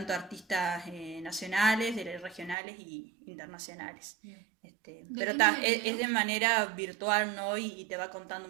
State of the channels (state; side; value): drops out; left; at 2.6 s